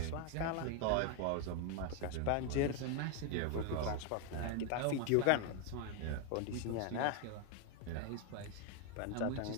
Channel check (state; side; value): different; both; correlation 0.01